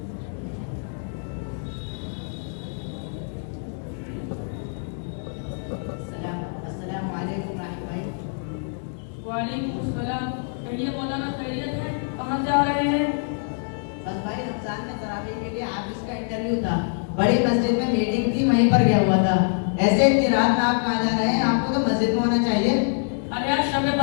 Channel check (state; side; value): silent; right; 62 dB below the other